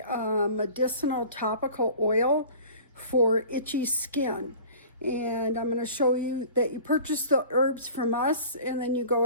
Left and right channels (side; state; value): both; inverted; correlation -0.43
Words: medicinal topical oil for itchy skin. And I'm going to show you that you purchase the herbs from us and then you